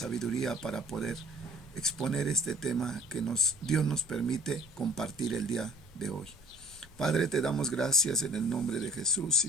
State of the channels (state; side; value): normal; both; correlation 0.52